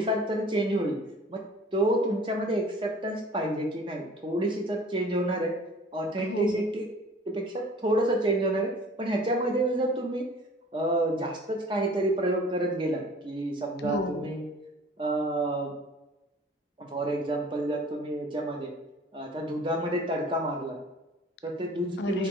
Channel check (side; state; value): both; normal; correlation 0.48